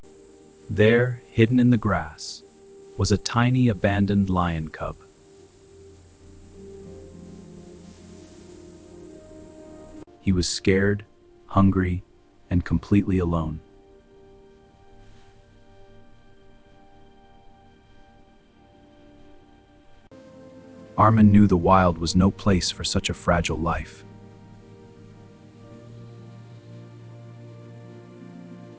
There, hidden in the grass, was a tiny abandoned lion cub. He was scared, hungry, and completely alone. Armin knew the wild was no place for such a fragile life.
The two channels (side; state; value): both; identical; correlation 1.00